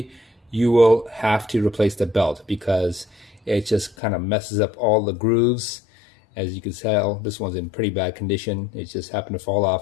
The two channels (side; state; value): right; drops out; at 4.0 s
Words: you will have to replace the belt because it just kind of messes up all the grooves. As you can tell, this one's in pretty bad condition. It just happened to fall